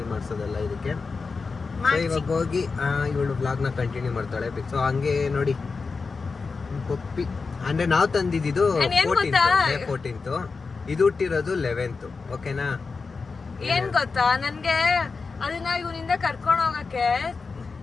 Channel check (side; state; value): right; quieter; 4.5 dB